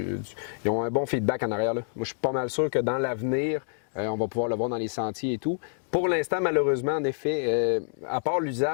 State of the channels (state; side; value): silent; right; digital silence